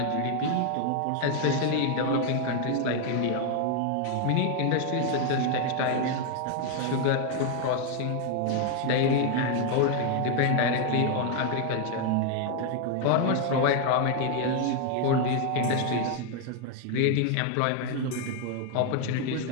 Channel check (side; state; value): both; different; correlation 0.00